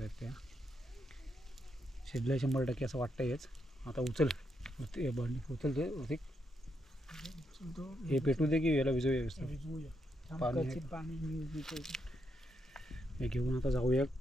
त्या. शिजलंय 100% असं वाटतंयच. आता उचल उचल ते ऋतिक. हे पेटू दे की याला विजय व्यवस्थित. पाणी हे घेऊन आता जाऊया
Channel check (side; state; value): both; normal; correlation 0.80